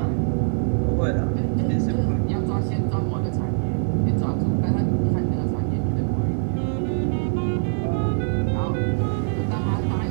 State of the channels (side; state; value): left; silent; 63 dB below the other